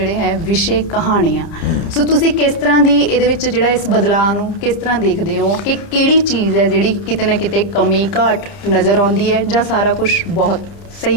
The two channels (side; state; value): right; late; 30 ms